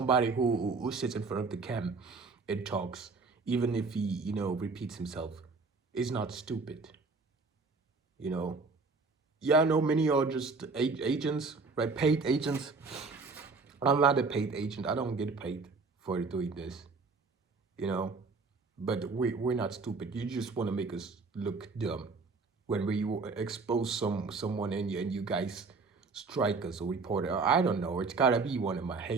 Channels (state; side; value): quieter; left; 4.2 dB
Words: who sits in front of the cam and talks, even if he repeats himself, is not stupid. You know, yeah, I know many are just agents, right? Paid agents. I'm not a paid agent. I don't get paid for doing this. You know, but we're not stupid. You just want to make us look dumb when we expose someone and you guys strike us or report it. I don't know. It's gotta be one of my